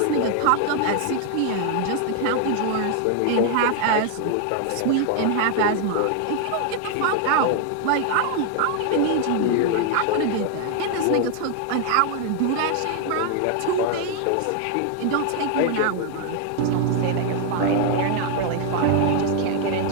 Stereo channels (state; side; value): different; both; correlation 0.00